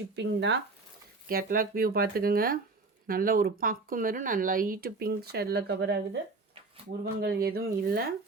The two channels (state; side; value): quieter; left; 3.8 dB